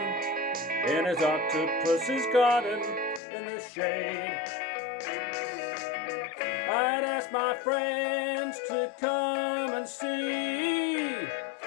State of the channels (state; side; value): drops out; right; at 3.2 s